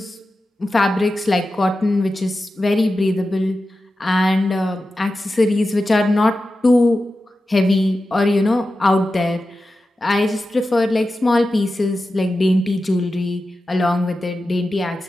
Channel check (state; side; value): normal; both; correlation 0.92